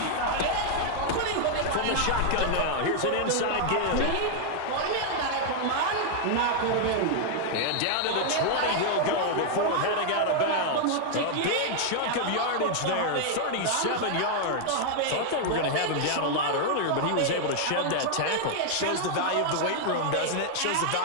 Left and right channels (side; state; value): both; different; correlation 0.00